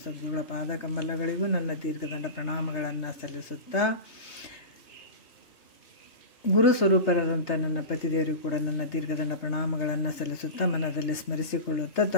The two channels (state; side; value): late; right; 3.3 ms